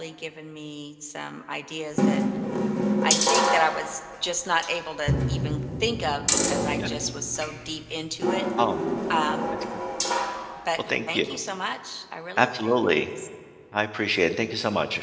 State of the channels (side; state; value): both; identical; correlation 1.00